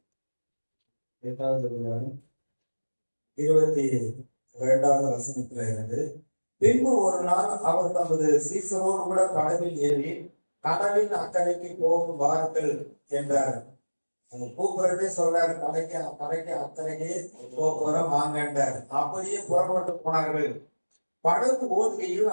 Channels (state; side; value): inverted; both; correlation -1.00